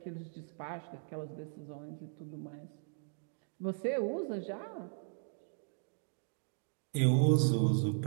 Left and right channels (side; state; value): left; silent; digital silence